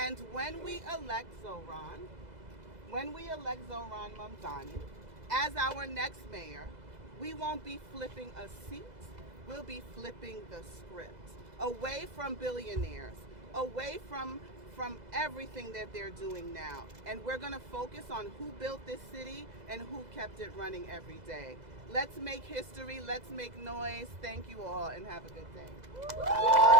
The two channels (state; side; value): late; left; 2.0 ms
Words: when we elect Zohran Mamdani as our next mayor, we won't be flipping a seat, we'll be flipping the script. Away from billionaires, away from everything that they're doing now. And we're gonna focus on who built this city and who kept it running every day. Let's make history, let's make noise. Thank you all and have a good day.